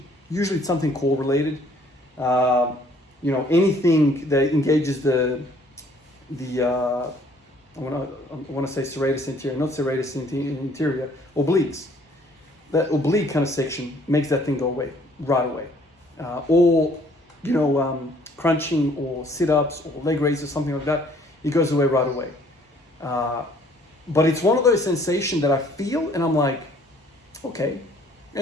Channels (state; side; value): normal; both; correlation 0.59